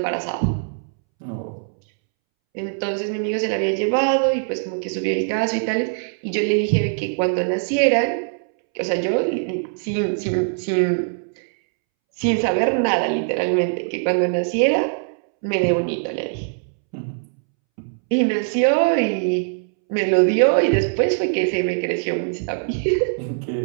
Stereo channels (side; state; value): left; silent; 65 dB below the other